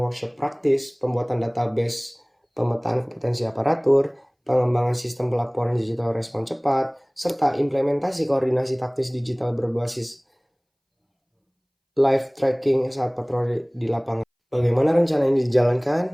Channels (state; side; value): identical; both; correlation 1.00